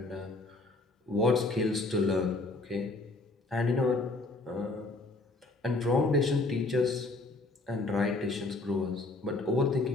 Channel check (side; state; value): right; quieter; 3.2 dB